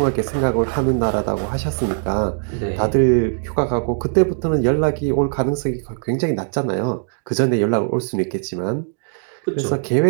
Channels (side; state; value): left; silent; 61 dB below the other